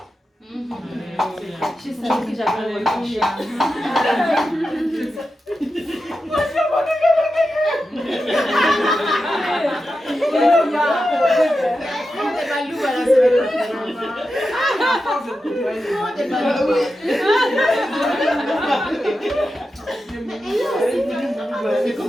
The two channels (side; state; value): both; normal; correlation 0.90